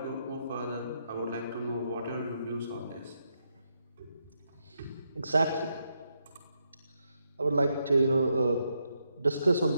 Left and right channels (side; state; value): both; inverted; correlation -0.81